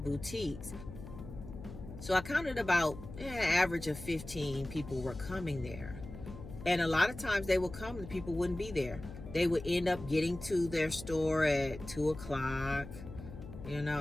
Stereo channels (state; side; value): noise; left; hum, 12 dB below the sound